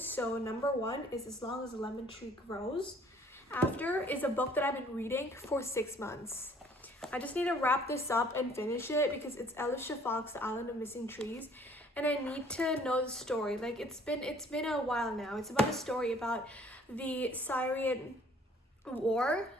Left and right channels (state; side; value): normal; both; correlation 0.57